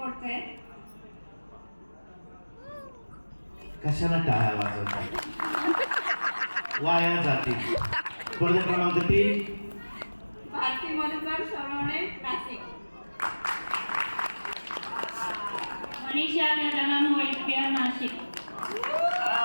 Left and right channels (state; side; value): inverted; both; correlation -1.00